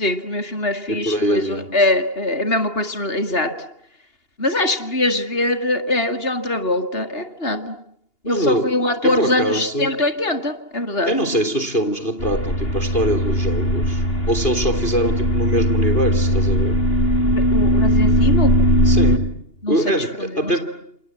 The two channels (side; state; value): right; late; 2.8 ms